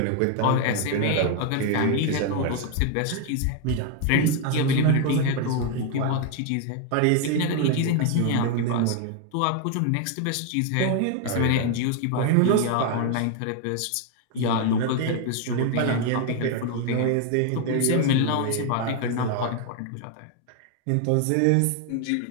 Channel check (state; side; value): different; both; correlation 0.00